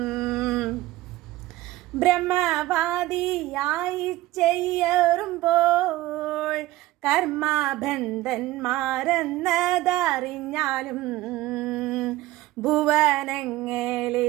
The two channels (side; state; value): left; quieter; 17.1 dB